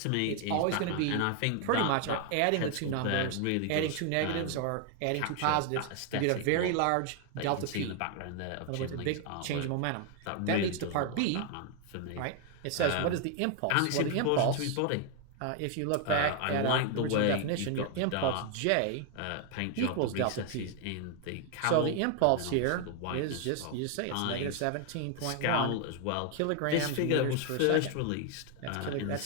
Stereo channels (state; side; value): different; both; correlation 0.00